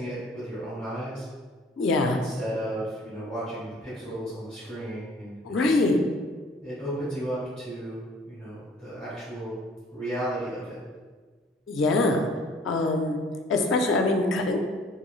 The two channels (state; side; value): normal; both; correlation 0.54